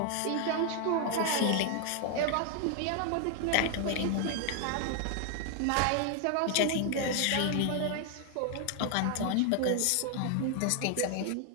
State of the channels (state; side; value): different; both; correlation 0.00